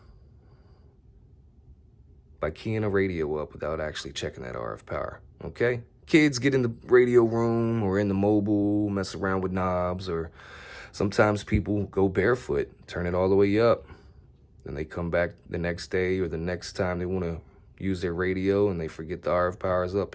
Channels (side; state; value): both; identical; correlation 1.00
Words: by keying a radio up without actually checking that RF power, okay? Kids get in the radio room or in the mobile, mess around with knobs, or sometimes people go barefoot, turn it all the way up. Then they come back the next day or the next time they want to use their radio and they forget the RF power is